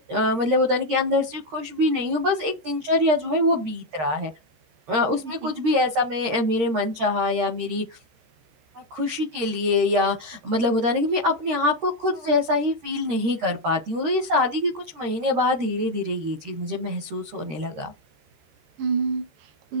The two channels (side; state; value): left; late; 13 ms